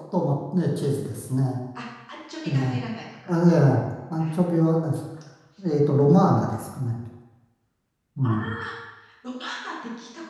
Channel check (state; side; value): identical; both; correlation 1.00